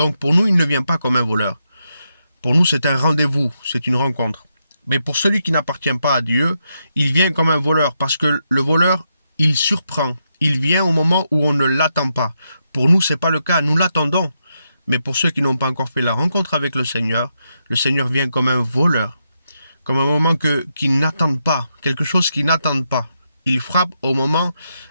pour nous, il ne vient pas comme un voleur. Pour nous, c'est un rendez-vous, c'est une rencontre. Mais pour celui qui n'appartient pas à Dieu, il vient comme un voleur, parce que le voleur, il surprend. Il vient au moment où on ne l'attend pas. Pour nous, ce n'est pas le cas, nous l'attendons. Mais pour ceux qui n'ont pas encore fait la rencontre avec le Seigneur vient comme un voleur, comme un moment qu'ils n'attendent pas, quelque chose qu'ils n'attendent pas. Il frappe un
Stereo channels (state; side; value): inverted; both; correlation -0.83